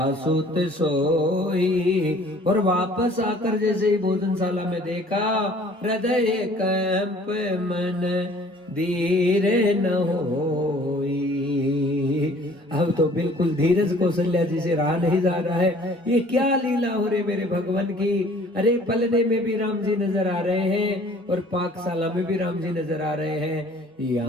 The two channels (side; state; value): both; normal; correlation 0.53